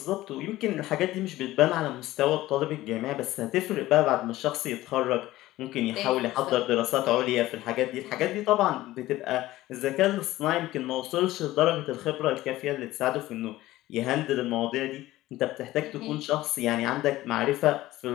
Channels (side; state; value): right; quieter; 16.5 dB